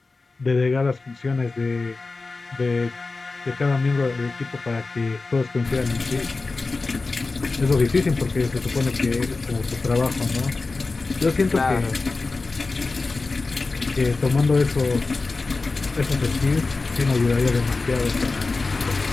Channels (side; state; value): right; quieter; 3.8 dB